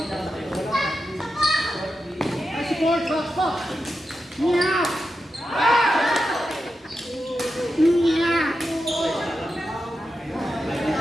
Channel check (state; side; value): normal; both; correlation 0.89